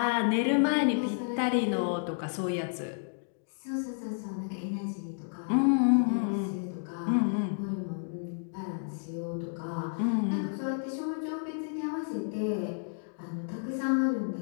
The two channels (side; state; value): right; silent; digital silence